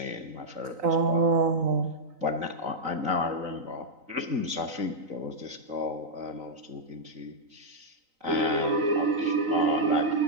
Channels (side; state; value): left; late; 3.9 ms